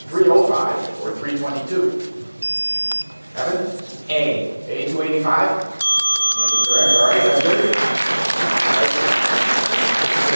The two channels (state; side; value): inverted; both; correlation -1.00